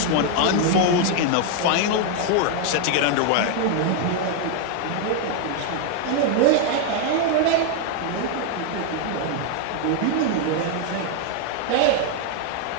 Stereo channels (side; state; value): both; different; correlation 0.00